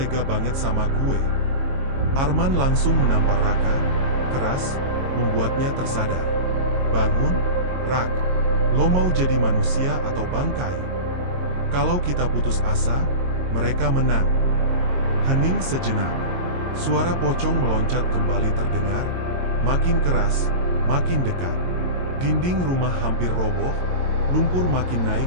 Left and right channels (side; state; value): left; late; 22 ms